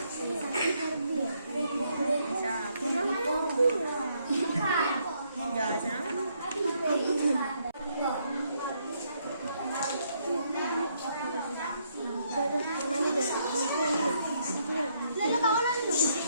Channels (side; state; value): both; inverted; correlation -0.73